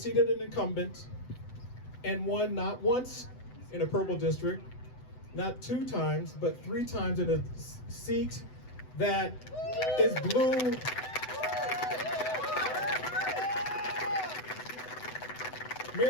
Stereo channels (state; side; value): late; right; 7.9 ms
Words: an incumbent and won not once in a purple district, not 2 times, but 3 times in a seat that is blue.